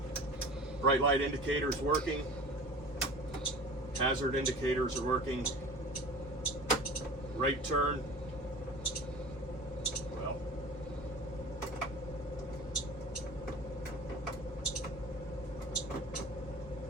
bright light indicator is working. Hazard indicators are working. Right turn. Well,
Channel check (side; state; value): both; normal; correlation 0.39